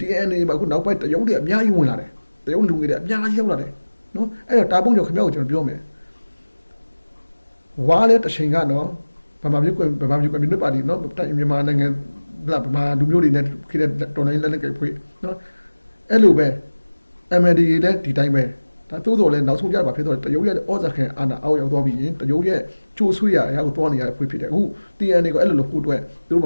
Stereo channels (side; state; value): both; inverted; correlation -1.00